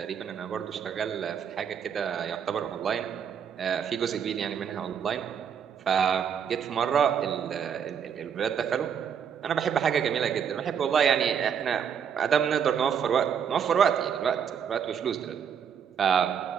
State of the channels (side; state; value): left; quieter; 7.8 dB